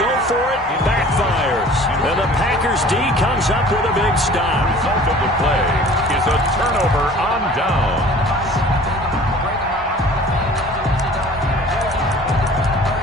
for it backfires. And the Packers' D comes up with a big stop. The result of the play is a turnover on down.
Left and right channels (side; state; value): both; normal; correlation 0.47